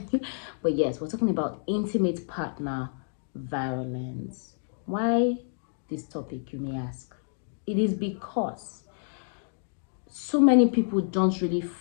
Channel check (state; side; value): silent; right; digital silence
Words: But yes, we're talking about intimate partner violence. Why this topic, you may ask? It is because so many people don't really